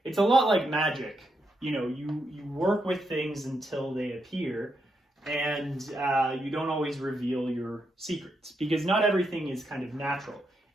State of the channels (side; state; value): both; normal; correlation 0.82